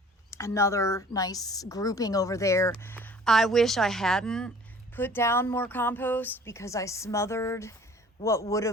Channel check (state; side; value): normal; both; correlation 0.50